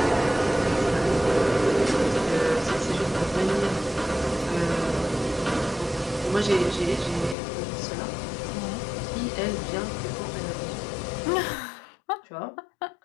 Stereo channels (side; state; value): right; drops out; at 7.4 s